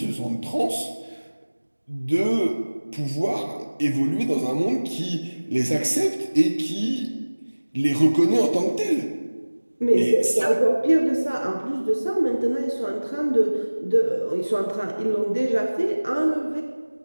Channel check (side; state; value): both; inverted; correlation -1.00